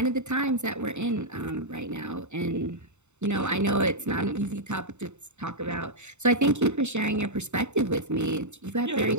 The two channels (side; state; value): left; late; 0.83 ms